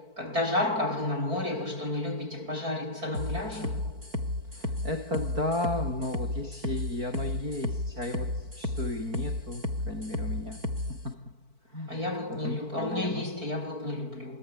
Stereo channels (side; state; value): left; late; 4.5 ms